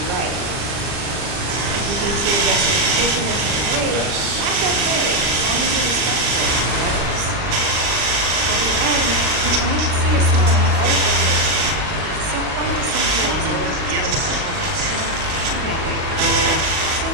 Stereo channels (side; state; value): left; late; 39 ms